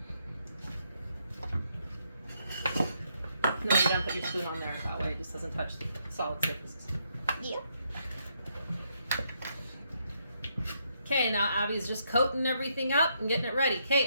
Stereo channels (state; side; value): inverted; both; correlation -0.75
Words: And then you don't put your spoon on there. That way it just doesn't touch the solid surfaces. Yeah. Okay, now Abby's just coating everything up and getting it ready. Okay,